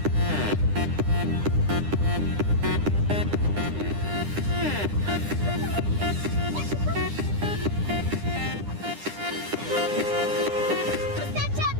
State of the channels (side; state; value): left; late; 9.9 ms